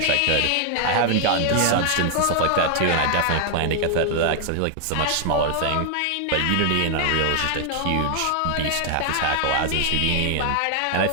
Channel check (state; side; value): different; both; correlation 0.00